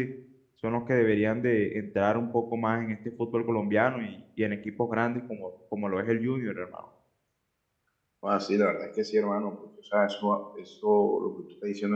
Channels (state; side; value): identical; both; correlation 1.00